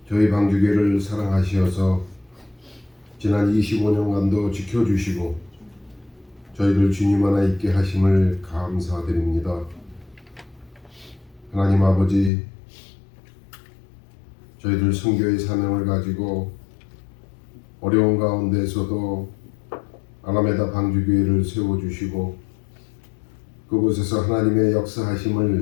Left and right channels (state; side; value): drops out; right; at 12.3 s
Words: 저희 방주교회를 사랑하시어서 지난 25년간도 지켜주시고 저희들 주님 하나 있게 하심을 감사드립니다. 하나님 아버지, 저희들 선교의 사명을 가지고 어려운 가운데서도 아라메다 방주교회를 세워주시고 그곳에서 하나님의